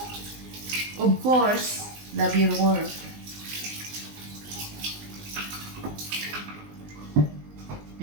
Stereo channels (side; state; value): left; late; 20 ms